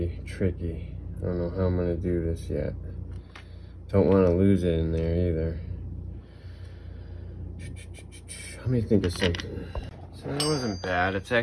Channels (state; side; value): identical; both; correlation 1.00